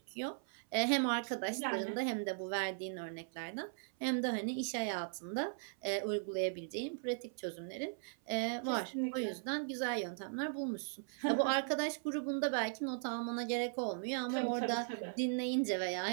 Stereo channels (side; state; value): left; silent; 52 dB below the other